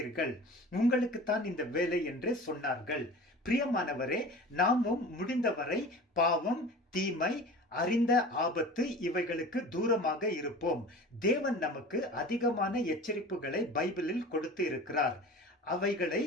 உங்களுக்கு தான் இந்த வேலை என்று சொன்னார்கள். பிரியமானவரே, நாமும் முடிந்தவரை பாவம், தீமை, அறிந்த ஆபத்து இவைகளுக்கு தூரமாக இருப்போம். தேவன் நமக்கு அதிகமான எச்சரிப்புகளை பைபிளில் கொடுத்து இருக்கிறார். அவைகளை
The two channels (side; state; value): both; normal; correlation 0.38